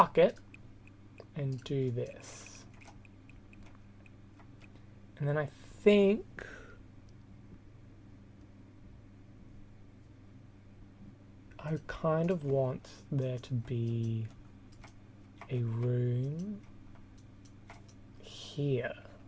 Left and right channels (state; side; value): identical; both; correlation 1.00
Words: it and do this. And then I think I kind of want there to be a room here.